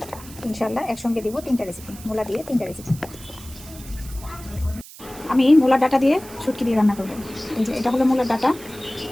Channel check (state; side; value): noise; right; hiss, 17 dB below the sound